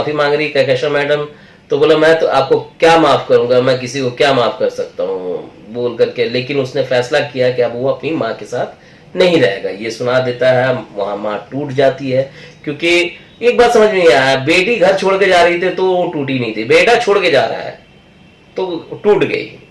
मांग रही है, कैशा मैडम। तो बोला मैं तो आपको क्या माफ करूंगा, मैं किसी को क्या माफ कर सकता हूँ बोल करके, लेकिन उसने फैसला किया कि अब वो अपनी माँ के साथ नहीं रहेगा। ये सुना देता है, वहां माँ टूट जाती है। क्योंकि एक बात समझ में नहीं आया, बेटी घर छोड़ के जा रही थी तो वो टूटी नहीं थी, बेटा छोड़ के जा रहा है तो टूट गई।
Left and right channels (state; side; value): identical; both; correlation 1.00